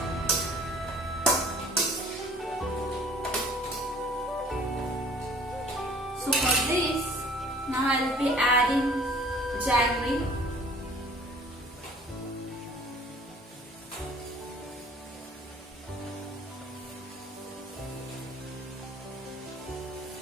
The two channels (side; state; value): both; normal; correlation 0.52